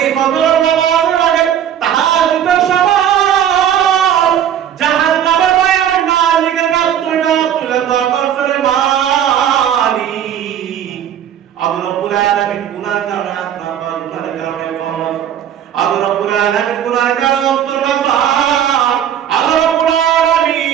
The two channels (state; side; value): quieter; left; 9.8 dB